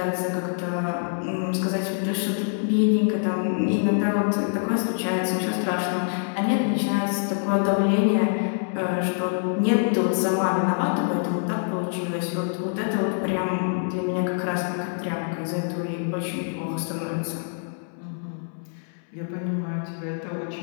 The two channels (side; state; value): right; silent; 62 dB below the other